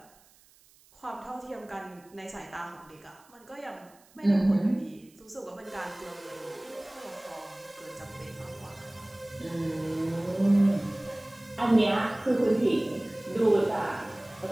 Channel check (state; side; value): noise; right; hiss, 28 dB below the sound